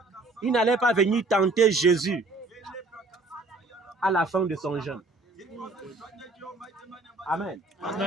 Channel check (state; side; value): quieter; left; 3.3 dB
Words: il n'allait pas venir tenter Jésus à la fin de son jeûne. Amen.